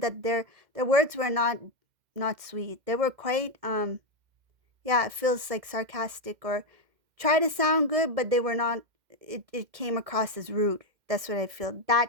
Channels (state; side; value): late; left; 2.1 ms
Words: their words were not sweet. They were quite yeah, it feels like sarcastic, or try to sound good, but they were not. It came across as rude. That's what I feel.